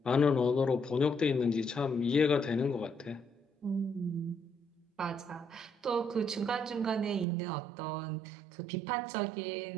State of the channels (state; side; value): drops out; left; at 7.2 s